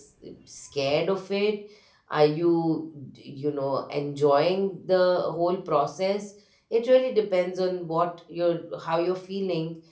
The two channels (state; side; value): identical; both; correlation 1.00